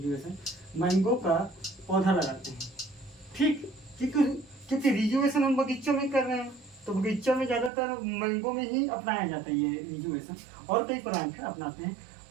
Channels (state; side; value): drops out; left; at 7.7 s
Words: मैंगो का पौधा लगाते हैं। ठीक, क्योंकि रिजुवेशन हम बगीचों में कर रहे हैं, तो बगीचों में ज़्यादातर मैंगो में ही अपनाया जाता है ये रिजुवेशन। और कई प्लांट है अपनाते हैं